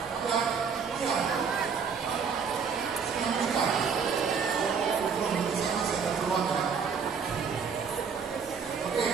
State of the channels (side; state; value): left; quieter; 6.1 dB